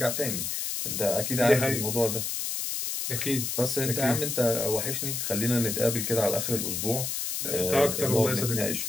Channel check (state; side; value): noise; left; hiss, 2 dB below the sound